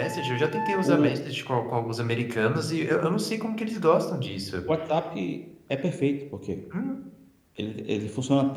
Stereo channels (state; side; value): identical; both; correlation 1.00